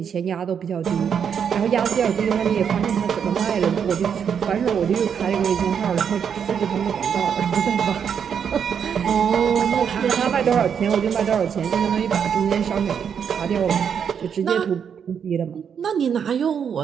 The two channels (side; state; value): left; quieter; 7.5 dB